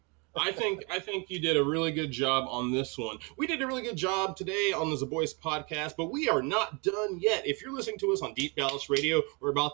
I think you did a really good job on this one. We did a really good job today on the Zaboys podcast, but we are not done yet. If you're listening to us on Deep Dallas Radio, we're about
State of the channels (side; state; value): left; quieter; 30.9 dB